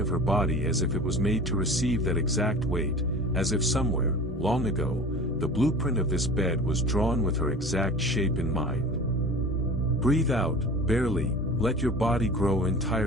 her body as if it was made to receive that exact weight, as if somewhere, long ago, the blueprint of this bed was drawn with her exact shape in mind. Breathe out, barely, let your body grow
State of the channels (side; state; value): both; normal; correlation 0.38